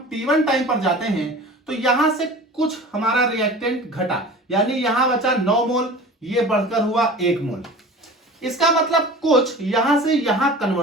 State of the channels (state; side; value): normal; both; correlation 0.39